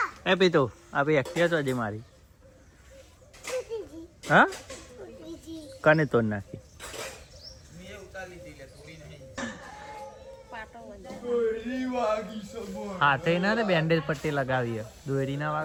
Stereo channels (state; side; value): identical; both; correlation 1.00